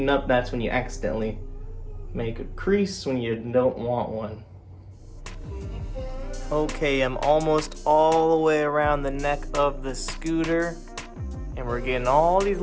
up, that's when you accidentally make a crease when you don't want one. Okay, I'm almost all the way around the neck of the scooter. And we're getting all these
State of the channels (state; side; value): identical; both; correlation 1.00